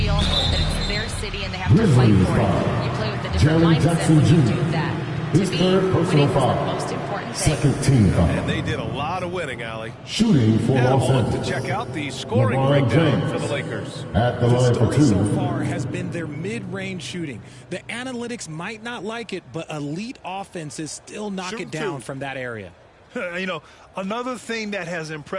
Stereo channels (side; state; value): both; identical; correlation 1.00